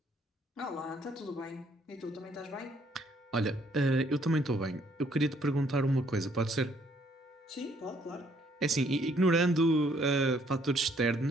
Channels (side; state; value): both; normal; correlation 0.66